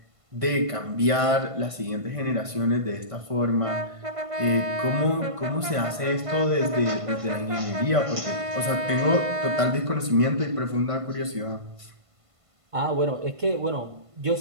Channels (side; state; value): left; late; 1.5 ms